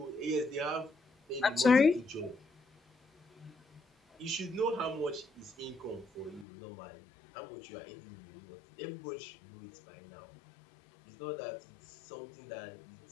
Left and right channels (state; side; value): drops out; right; at 6.5 s